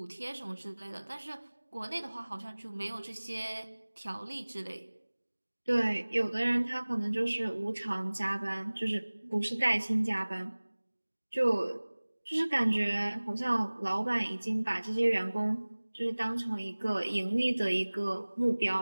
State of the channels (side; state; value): both; inverted; correlation -1.00